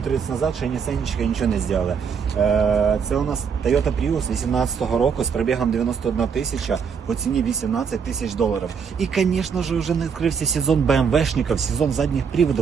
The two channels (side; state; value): left; quieter; 6.5 dB